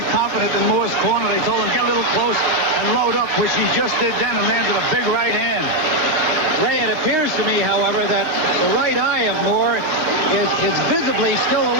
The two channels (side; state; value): left; late; 6.5 ms